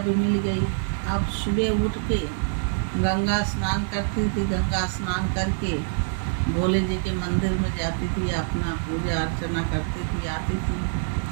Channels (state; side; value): silent; left; digital silence